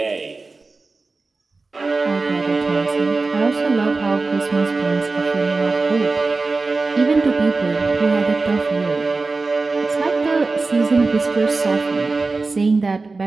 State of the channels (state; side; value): quieter; left; 3.8 dB